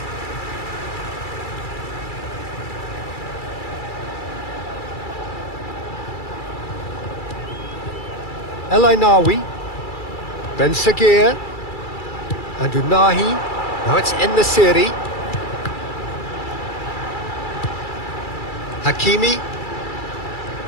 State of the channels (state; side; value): late; right; 2.3 ms